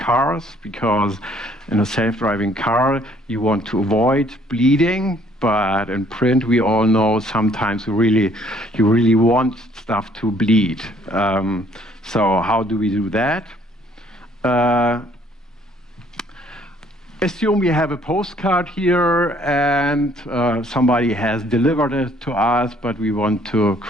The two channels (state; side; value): normal; both; correlation 0.61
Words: because in a self-driving car you want to avoid bleeding, but in print we all know sometimes you really want stuff to bleed. So how do we do that? Assume we have a postcard here and somebody has delivered it to us, but we want to